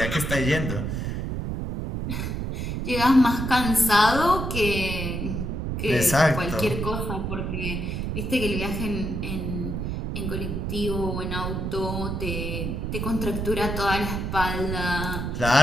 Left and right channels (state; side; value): noise; right; rumble, 3 dB below the sound